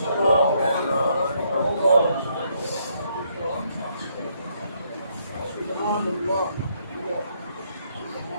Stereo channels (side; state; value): both; inverted; correlation -0.72